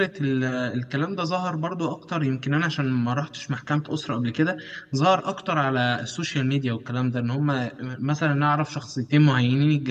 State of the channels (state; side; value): identical; both; correlation 1.00